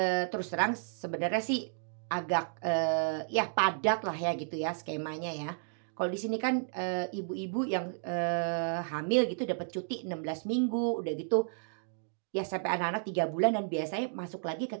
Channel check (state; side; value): silent; left; digital silence